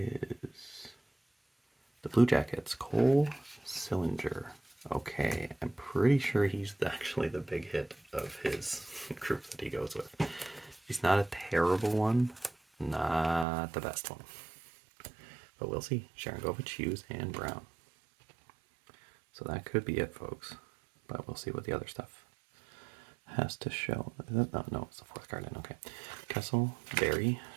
the Blue Jackets, Cole Sillinger. Okay, I'm pretty sure he's actually the big hit of his group that he goes with. He's not a terrible one, not the best one. But we'll see. Sharangovich, Hughes, and Brown. So that could be it, folks. But we'll see what the other stuff has to show. No, it's the fourth card in. Okay. Kessel, Barry,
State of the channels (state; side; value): drops out; left; at 13.5 s